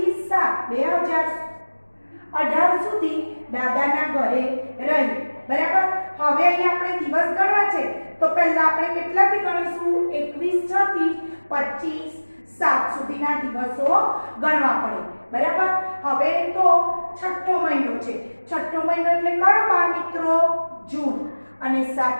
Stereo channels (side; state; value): both; inverted; correlation -1.00